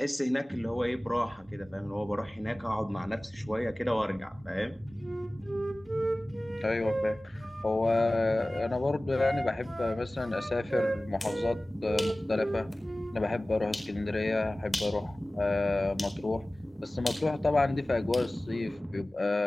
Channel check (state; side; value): normal; both; correlation 0.98